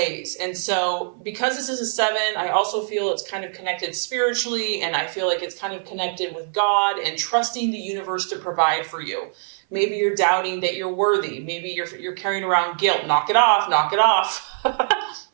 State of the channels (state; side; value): silent; left; 57 dB below the other